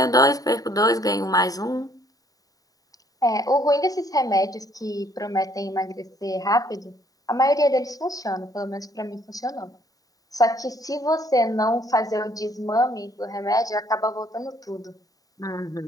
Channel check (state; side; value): late; right; 0.18 ms